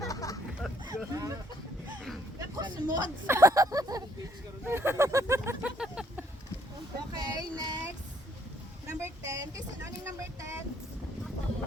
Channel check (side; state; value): both; normal; correlation 0.66